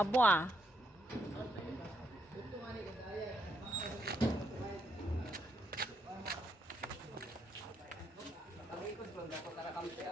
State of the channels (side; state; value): both; normal; correlation 0.76